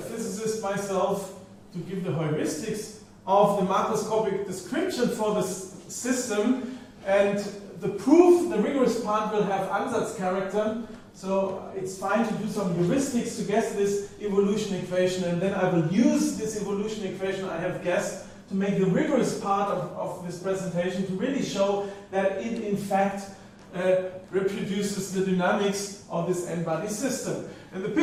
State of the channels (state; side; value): identical; both; correlation 1.00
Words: myself, to give the heuristics of the macroscopic description for this system. And the proof, the rigorous part, will have ansatz character. So it's fine to do some heuristics to guess this evolution equation, and then I will use this evolution equation I have guessed to make the rigorous part of this presentation to really show that it in fact reproduces the dynamics of this n-body system. And the